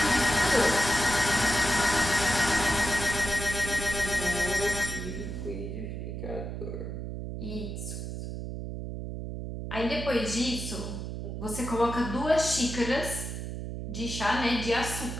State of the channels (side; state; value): right; noise; hum, 6 dB below the sound